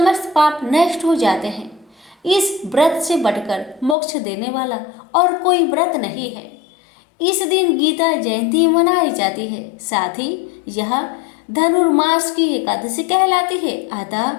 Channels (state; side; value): drops out; right; at 4.0 s